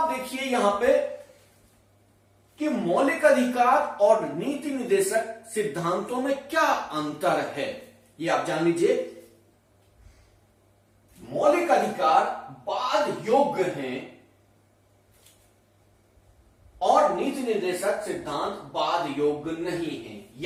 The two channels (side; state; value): both; identical; correlation 1.00